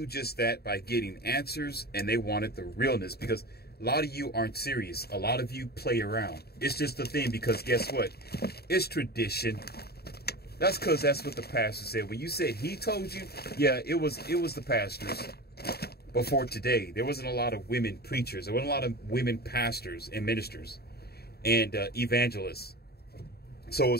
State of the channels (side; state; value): right; late; 0.46 ms